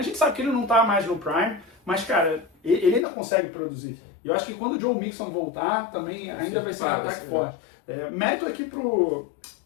gente sabe que ele não está mais no prime, mas, cara, ele ainda consegue produzir. E eu acho que quando o Joe Mixon voltar, também ainda vai ser um ataque forte. Mérito aqui pro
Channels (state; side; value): drops out; right; at 3.1 s